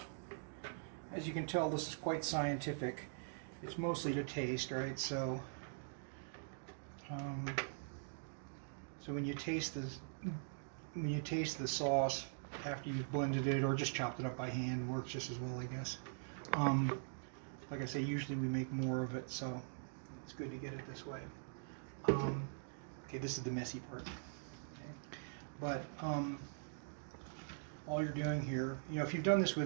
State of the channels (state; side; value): silent; left; digital silence